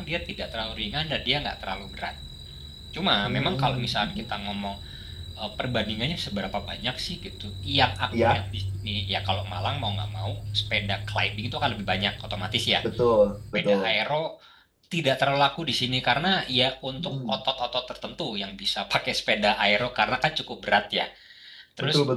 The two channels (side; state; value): both; identical; correlation 1.00